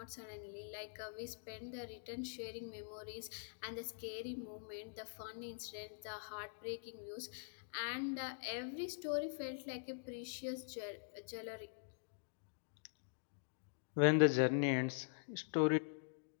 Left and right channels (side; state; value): right; silent; digital silence